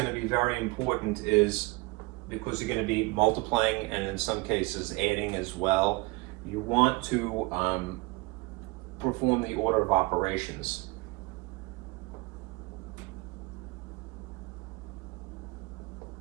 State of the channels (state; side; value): quieter; left; 24.6 dB